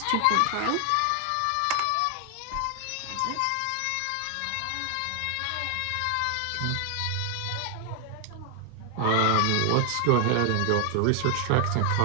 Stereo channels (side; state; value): both; different; correlation 0.00